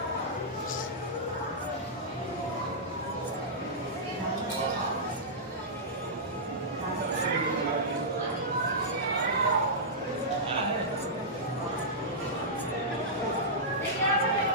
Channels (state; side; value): normal; both; correlation -0.13